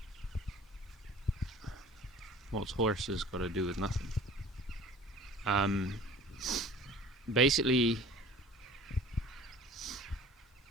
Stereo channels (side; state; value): both; normal; correlation 0.45